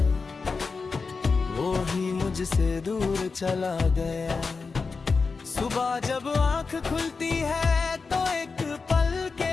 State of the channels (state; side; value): quieter; right; 4.6 dB